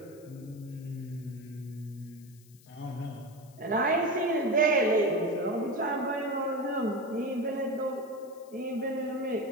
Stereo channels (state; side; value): noise; left; hiss, 26 dB below the sound